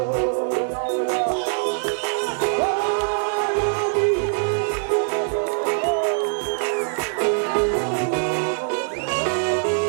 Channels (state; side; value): silent; left; digital silence